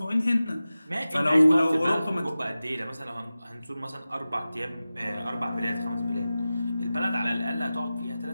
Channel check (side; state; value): both; inverted; correlation -0.95